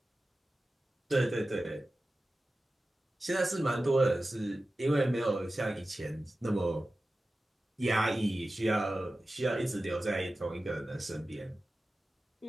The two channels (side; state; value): both; normal; correlation 0.95